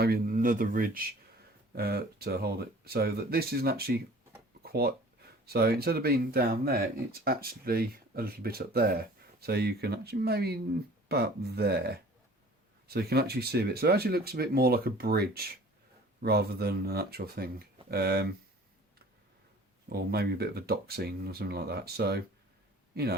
another ridge to hold it. So that this isn't actually quite... So instead of being down there, it's actually a little bit up there. So you can actually maybe about there. So you can actually see a bit. So it actually looks a bit more like a bridge rather than an actual thing. Or maybe a bit of a dock scene or something like that. So, you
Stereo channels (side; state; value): both; normal; correlation 0.48